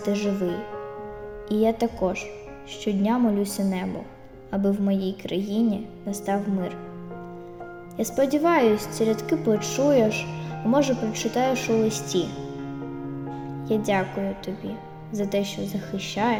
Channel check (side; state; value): both; identical; correlation 1.00